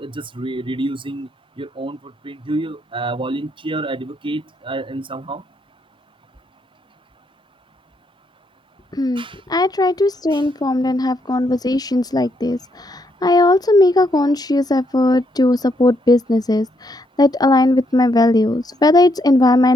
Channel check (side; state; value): both; normal; correlation 0.75